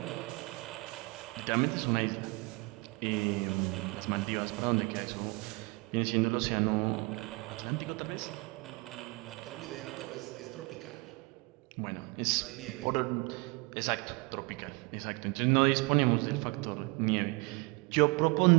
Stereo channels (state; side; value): quieter; left; 26.4 dB